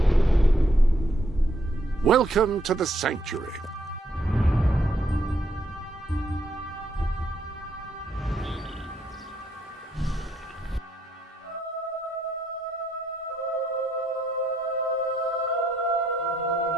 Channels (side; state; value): both; normal; correlation 0.73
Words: Welcome to the Sanctuary.